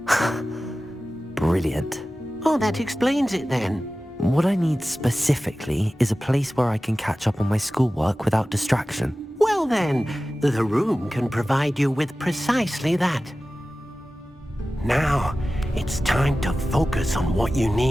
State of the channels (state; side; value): normal; both; correlation 0.96